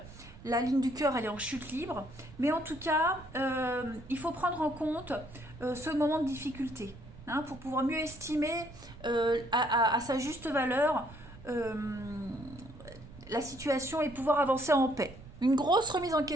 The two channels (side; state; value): right; noise; rumble, 18 dB below the sound